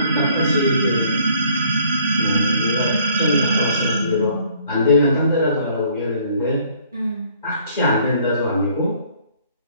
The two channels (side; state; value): both; inverted; correlation -0.60